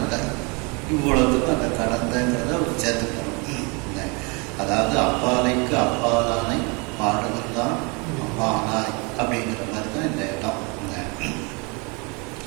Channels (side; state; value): left; quieter; 30.9 dB